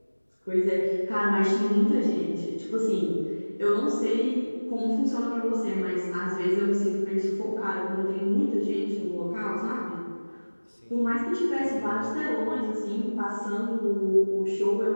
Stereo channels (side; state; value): both; inverted; correlation -1.00